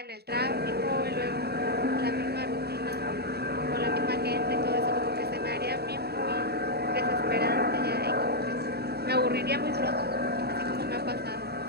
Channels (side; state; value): left; late; 0.47 ms